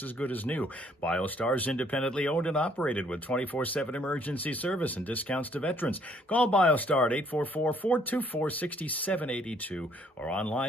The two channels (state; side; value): normal; both; correlation 0.64